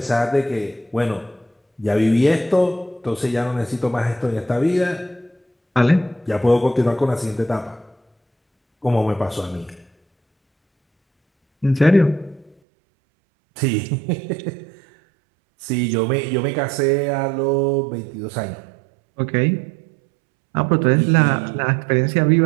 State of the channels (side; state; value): left; drops out; at 12.6 s